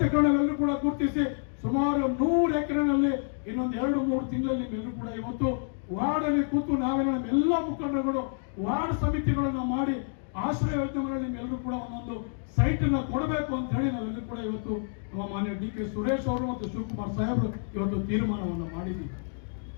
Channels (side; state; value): right; silent; digital silence